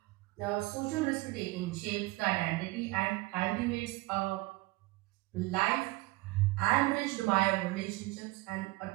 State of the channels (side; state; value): left; quieter; 21.4 dB